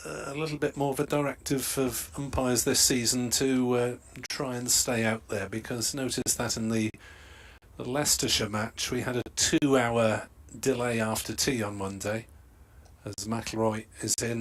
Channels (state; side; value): identical; both; correlation 1.00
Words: a little bit more of a directive of umpires this season to try and stay out there, because notice that in the Leicestershire match we had a 2-hour delay after tea on Monday as McIlroy is